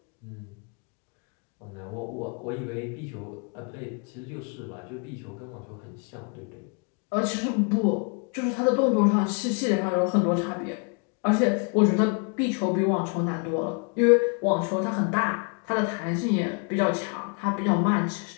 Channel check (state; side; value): quieter; right; 37.7 dB